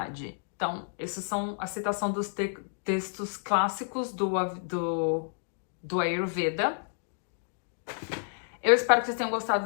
Então, essas são a citação dos textos clássicos do Ayurveda. Eu espero que vocês tenham gostado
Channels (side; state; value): right; silent; digital silence